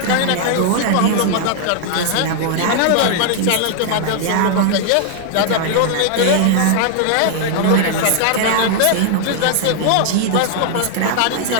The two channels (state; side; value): different; both; correlation 0.00